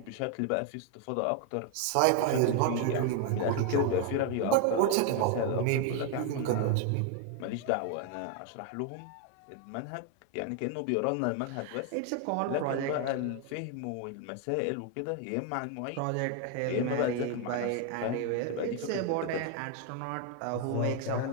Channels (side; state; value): both; different; correlation 0.01